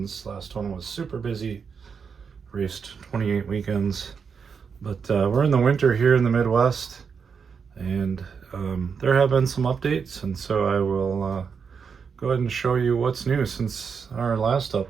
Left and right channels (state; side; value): quieter; left; 6.1 dB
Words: Last one was super busy. Raced 28 weekends. But we're in the winter here in the Midwest, and there have been some updates, and so I will go ahead and show you what's new since our last